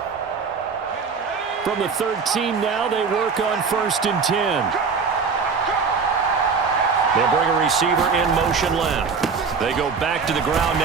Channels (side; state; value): left; quieter; 5.3 dB